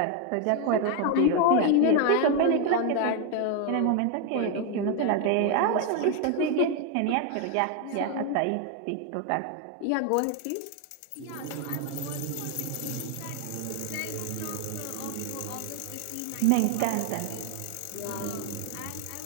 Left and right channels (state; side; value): different; both; correlation 0.01